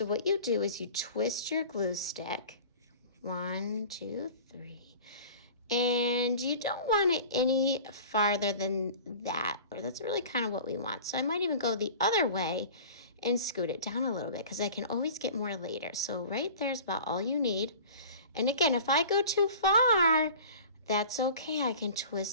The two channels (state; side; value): inverted; both; correlation -0.41